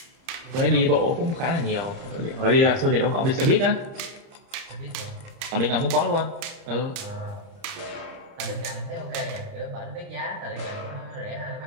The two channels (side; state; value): left; late; 31 ms